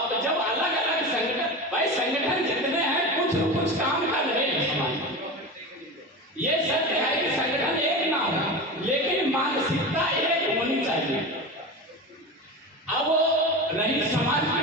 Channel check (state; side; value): normal; both; correlation 0.26